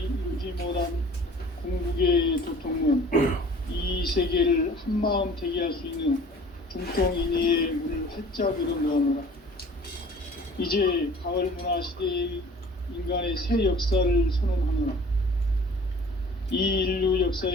이루지 못한 궁극의 도통문, 이 세계를 한마음 되게 할 수 있는 중통인의의 문을 활짝 열어놓으노라. 이제 가을 문화 시대의 인간의 새 역사를 선언하노라. 이 인류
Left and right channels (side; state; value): both; normal; correlation 0.48